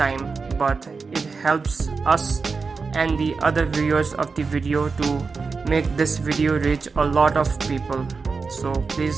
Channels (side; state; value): left; quieter; 4.6 dB